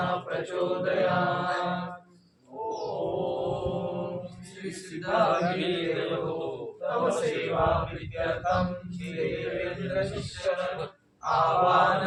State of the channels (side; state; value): both; identical; correlation 1.00